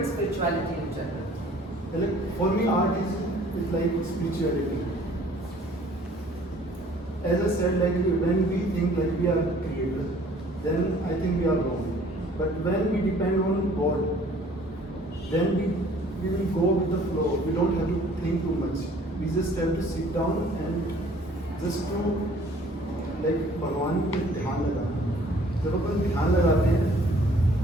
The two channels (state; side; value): normal; both; correlation 0.55